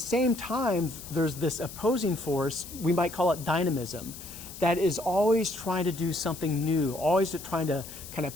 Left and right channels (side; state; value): left; noise; hiss, 13 dB below the sound